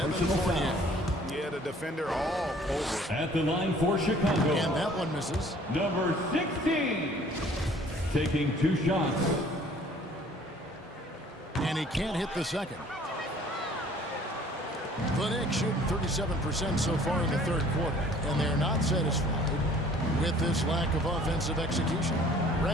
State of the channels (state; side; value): normal; both; correlation 0.54